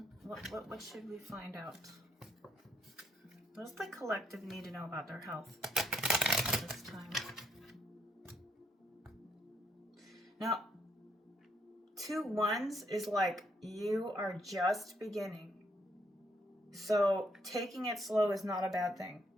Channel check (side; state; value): both; normal; correlation 0.73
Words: What should we find out? What does the collective need to know about their health this time? Now, 2 wands is like you are just beginning. So taking it slow is not a bad thing.